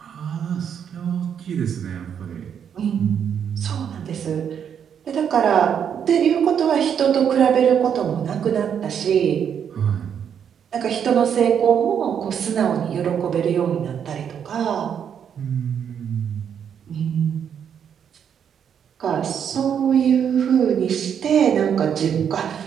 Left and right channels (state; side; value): quieter; left; 8.1 dB